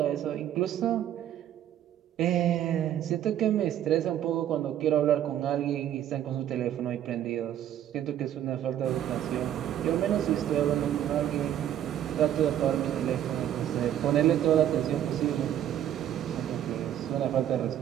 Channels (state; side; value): quieter; left; 11.0 dB